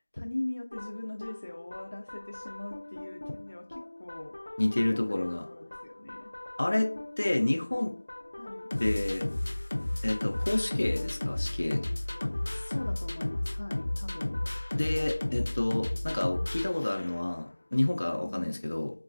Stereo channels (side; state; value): both; inverted; correlation -1.00